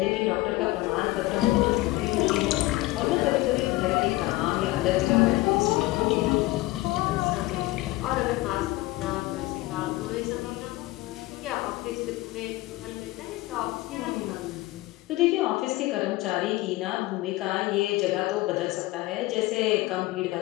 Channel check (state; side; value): quieter; right; 19.1 dB